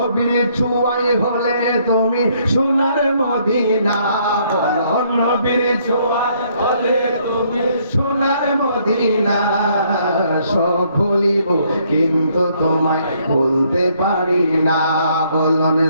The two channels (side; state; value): both; inverted; correlation -0.68